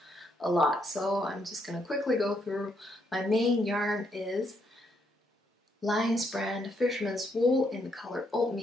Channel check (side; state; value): both; normal; correlation 0.75